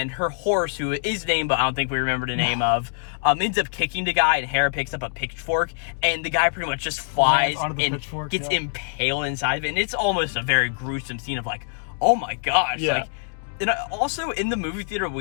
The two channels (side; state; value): right; silent; digital silence